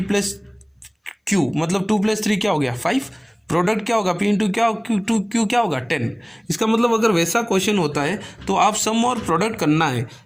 प्लस q मतलब 2 + 3 क्या हो गया 5, प्रोडक्ट क्या होगा p इंटू क्या q क्या होगा 10। इसका मतलब अगर वैसा क्वेश्चन होता है तो आप सम और प्रोडक्ट करना है,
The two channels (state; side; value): identical; both; correlation 1.00